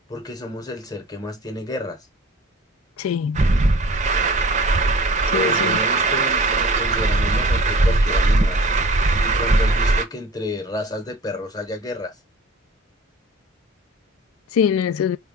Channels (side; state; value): both; normal; correlation 0.42